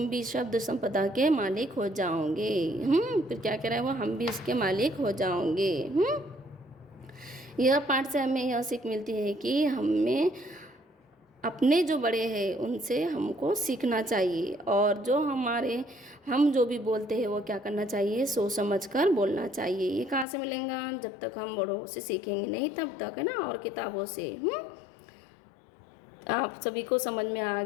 भी शब्द संपदा के मालिक हो जाओगे। फिर क्या कह रहा है वो, हम भी इसके मालिक हो जाओगे। यह पाठ से हमें यह सीख मिलती है कि हमें अपने जो बड़े हैं उनसे हमको सीखना चाहिए, और जो हम जो भी बोलते हैं वो क्या करना चाहिए, सोच समझ कर बोलना चाहिए। ये कहाँ से मिलेगा, जब तक हम बड़ों से सीखेंगे नहीं तब तक, है ना, और किताबों से। आप सभी को समझ में आ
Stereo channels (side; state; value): right; drops out; at 20.2 s